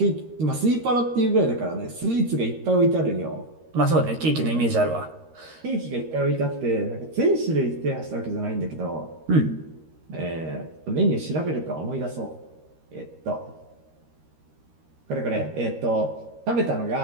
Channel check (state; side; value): late; left; 13 ms